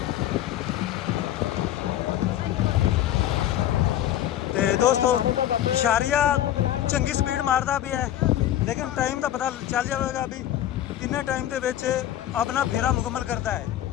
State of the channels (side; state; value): right; quieter; 12.1 dB